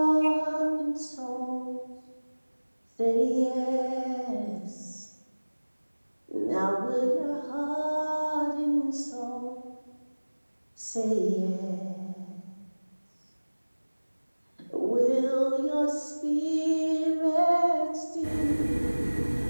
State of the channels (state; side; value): inverted; both; correlation -1.00